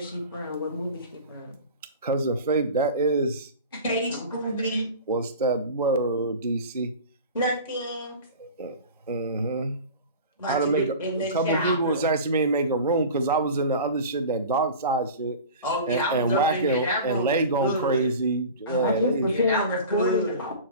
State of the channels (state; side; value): inverted; both; correlation -0.36